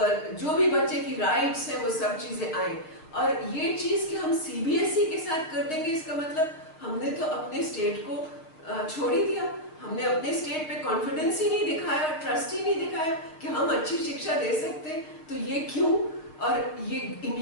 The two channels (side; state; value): right; late; 6.3 ms